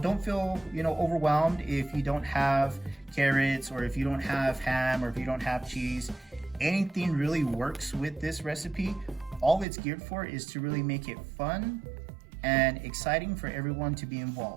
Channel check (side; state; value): left; drops out; at 9.7 s